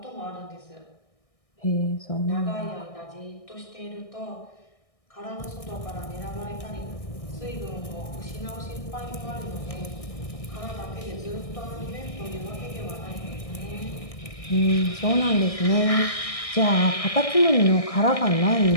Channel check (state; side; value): late; right; 1.6 ms